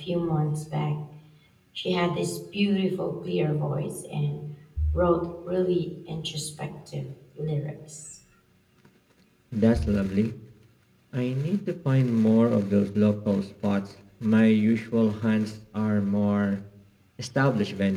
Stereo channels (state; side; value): identical; both; correlation 1.00